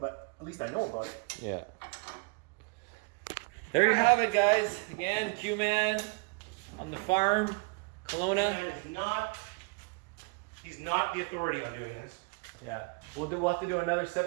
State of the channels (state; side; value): quieter; left; 31.1 dB